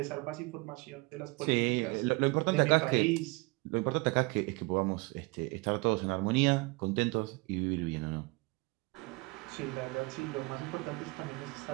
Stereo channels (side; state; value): left; quieter; 26.4 dB